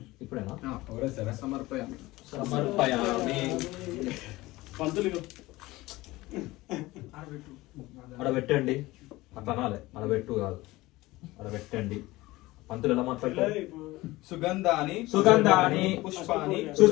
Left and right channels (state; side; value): quieter; right; 19.4 dB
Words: ఇప్పుడేనా సమర్పయామి. సమర్పయామి పంతులు అక్కడ పెట్టండి అట్లా అనాలి అక్కడ పెట్టు కాదు అక్కడ పెట్టండి పంతులు ఎలా మాట్లాడతారు సుగంధాని సుగంధాని పుష్పాని